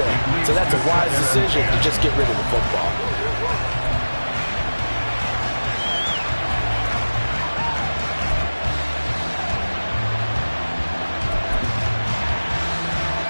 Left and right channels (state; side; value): inverted; both; correlation -1.00